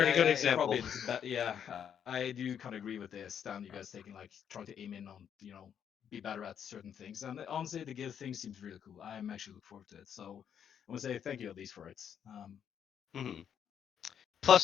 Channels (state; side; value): quieter; right; 8.5 dB